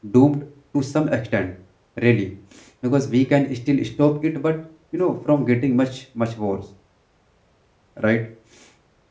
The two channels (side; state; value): both; identical; correlation 1.00